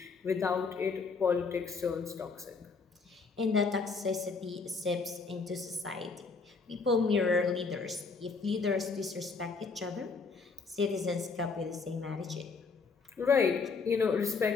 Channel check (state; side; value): quieter; right; 4.7 dB